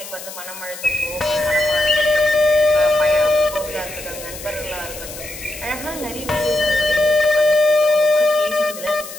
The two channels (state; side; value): noise; left; hiss, 13 dB below the sound